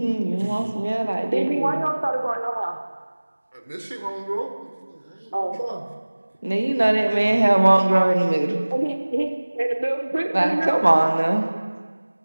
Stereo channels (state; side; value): inverted; both; correlation -1.00